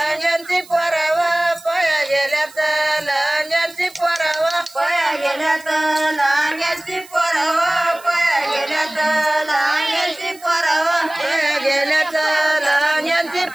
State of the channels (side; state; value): right; noise; hiss, 22 dB below the sound